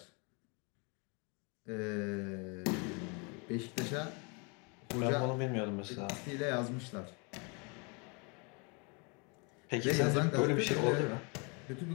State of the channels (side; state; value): right; quieter; 32.7 dB